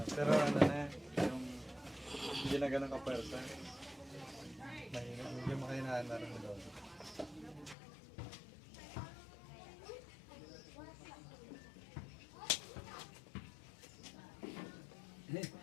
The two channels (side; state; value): right; drops out; at 7.8 s